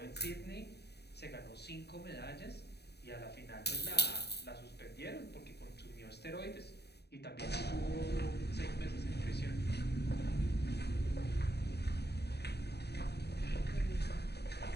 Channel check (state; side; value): late; right; 0.48 ms